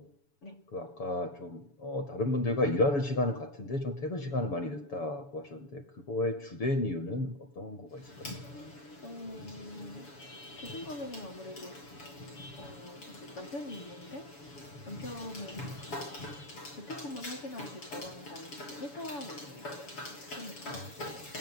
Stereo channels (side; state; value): right; late; 7.0 ms